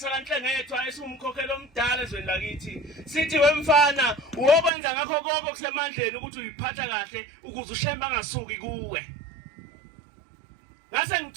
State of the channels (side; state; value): left; drops out; at 4.7 s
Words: esumkhokhelo omdala ezweni lakithi sithi wemfana ukwenza ngakho konke kusemandleni ukuthi uyiphatha kahle ukuze ushemba ngasuki kuwe ngase